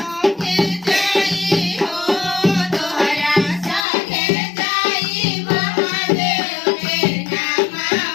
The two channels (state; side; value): drops out; right; at 3.9 s